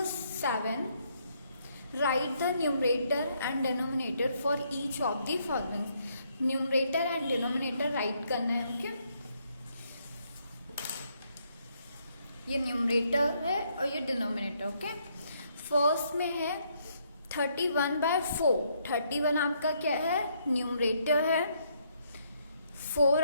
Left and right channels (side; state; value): both; inverted; correlation -0.72